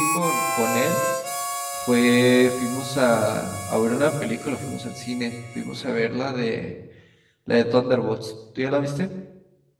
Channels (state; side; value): identical; both; correlation 1.00